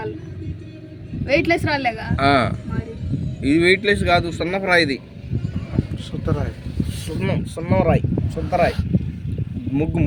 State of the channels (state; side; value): identical; both; correlation 1.00